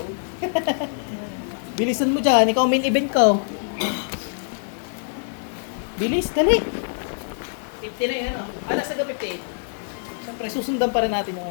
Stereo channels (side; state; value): right; silent; digital silence